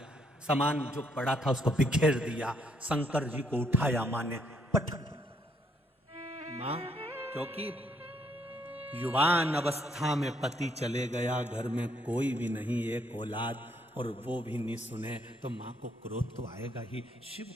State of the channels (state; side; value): normal; both; correlation 0.71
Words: सामान जो पड़ा था उसको बिखेर दिया। शंकर जी को उठाया मां ने, पटक। मां, क्योंकि युवान अवस्था में पति चले गया, घर में कोई भी नहीं, एक औलाद, और वो भी नहीं सुने तो मां को क्रोध तो आएगा ही। शिव